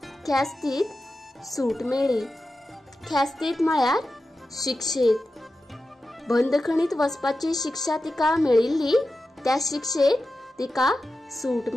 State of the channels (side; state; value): both; normal; correlation 0.92